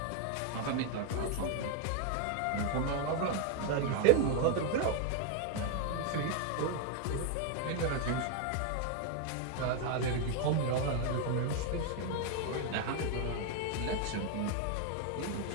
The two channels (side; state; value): both; different; correlation 0.00